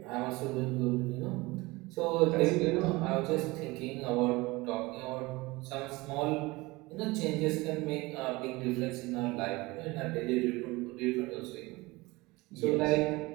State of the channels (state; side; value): quieter; left; 22.4 dB